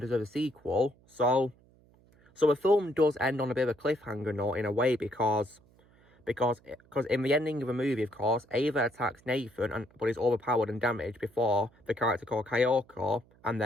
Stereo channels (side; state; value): right; noise; hum, 30 dB below the sound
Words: a sequel, so the film does end on a bit of a cliffhanger note in a way, because in the ending of the movie, of course, Ava attacks Nathan, but is overpowered and damaged before the character called Kyoko and